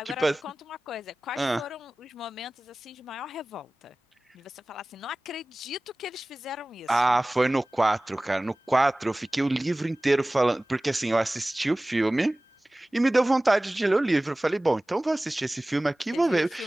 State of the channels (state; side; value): normal; both; correlation 0.98